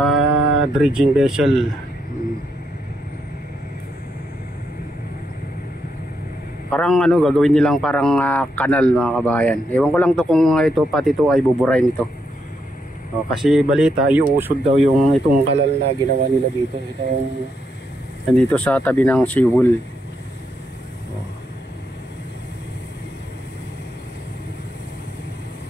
dredging vessel. Parang gagawin nilang parang kanal mga kabayan. Ewan ko lang to kung pati ito ay buburain ito. Kasi balita iuusod daw itong kanal na ginawa nila dito. Nandito sa tabi ng seawall.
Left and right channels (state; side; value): normal; both; correlation 0.80